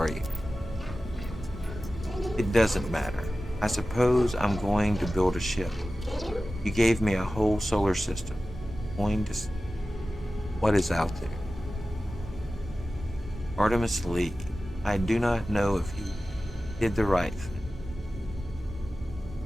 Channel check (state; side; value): normal; both; correlation 0.95